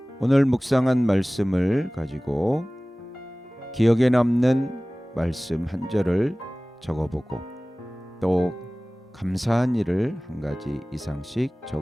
오늘 묵상한 말씀을 가지고 기억에 남는 말씀 한 절을 적어보고 또 감사한 일을 한 가지 이상씩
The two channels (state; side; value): normal; both; correlation 0.98